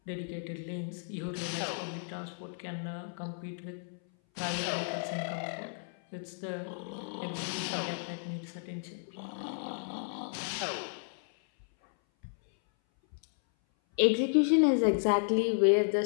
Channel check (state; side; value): silent; right; 56 dB below the other